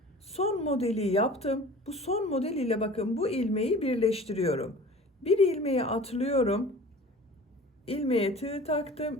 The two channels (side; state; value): both; normal; correlation 0.42